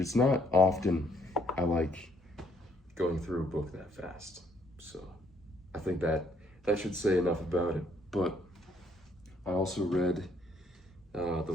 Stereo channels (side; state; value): both; normal; correlation 0.67